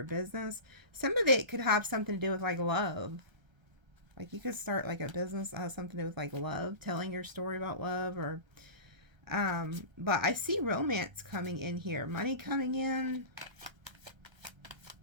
business. Some of it could have something to do with like love. Like you could start like a business that has something to do with like love, telling your story about love, or but I see romance coming in here, money coming in.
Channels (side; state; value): left; late; 1.3 ms